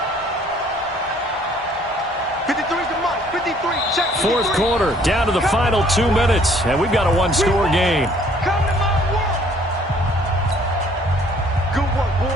53's the mark. 53. Check. 4th quarter, down to the final 2 minutes, and we've got a 1-score game. Come to my work. Good work,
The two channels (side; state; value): both; normal; correlation 0.59